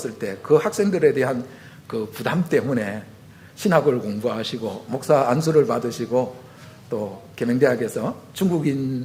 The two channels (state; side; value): identical; both; correlation 1.00